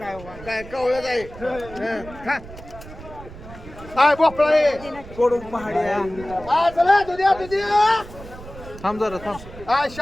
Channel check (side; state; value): right; noise; rumble, 16 dB below the sound